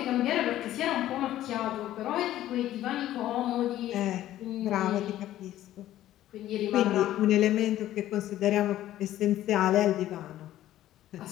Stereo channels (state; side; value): quieter; right; 13.5 dB